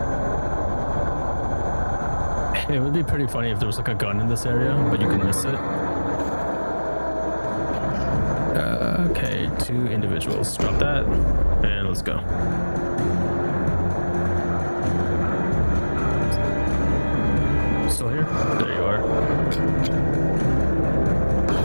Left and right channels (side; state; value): both; inverted; correlation -1.00